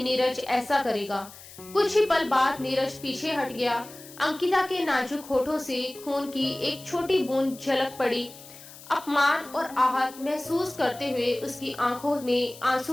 नीरज ऐसा करेगा। कुछ ही पल बाद नीरज पीछे हट गया। अंकिता के नाजुक होठों से खून की एक छोटी बूंद झलक पड़ी। अपमान और आहत महसूस करते हुए उसकी आंखों में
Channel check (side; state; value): left; noise; hiss, 18 dB below the sound